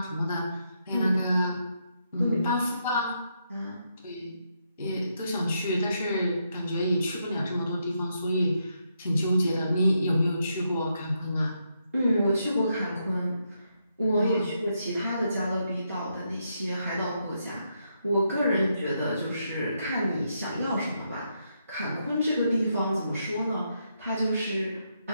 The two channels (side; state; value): both; inverted; correlation -0.80